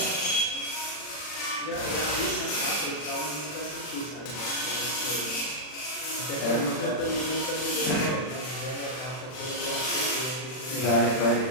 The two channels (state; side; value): late; right; 39 ms